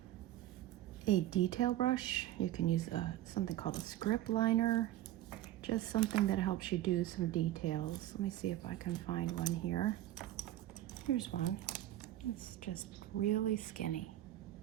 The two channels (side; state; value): left; quieter; 13.9 dB